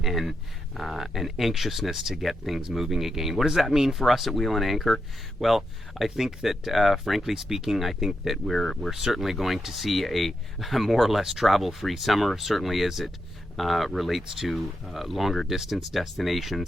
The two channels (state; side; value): normal; both; correlation 0.85